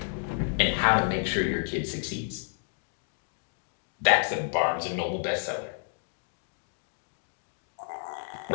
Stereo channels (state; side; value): silent; right; digital silence